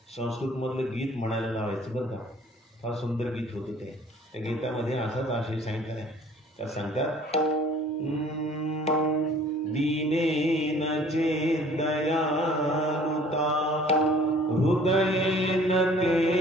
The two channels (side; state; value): both; normal; correlation 0.52